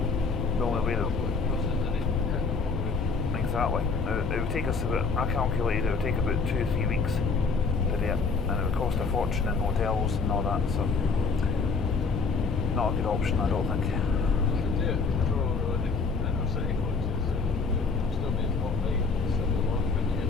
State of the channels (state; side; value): quieter; right; 4.6 dB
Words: The only way that exactly. It would take us about, I calculated it would take about 2 or 3 weeks to do it, and it would cost a fortune in hotels and all that, so not a good option, I don't think.